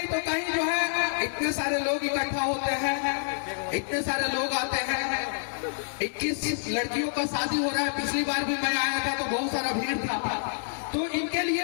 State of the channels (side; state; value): right; silent; digital silence